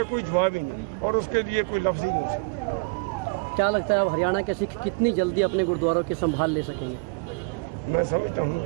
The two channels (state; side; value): quieter; left; 32.1 dB